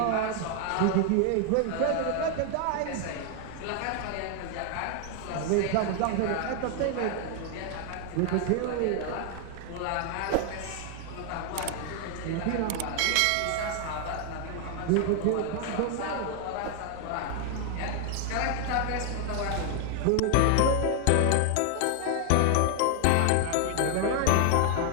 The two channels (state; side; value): different; both; correlation 0.00